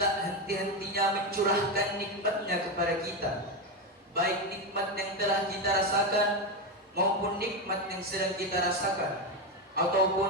henti-hentinya mencurahkan nikmatnya kepada kita, baik nikmat yang telah kita rasakan maupun nikmat yang sedang kita rasakan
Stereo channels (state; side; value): normal; both; correlation 0.12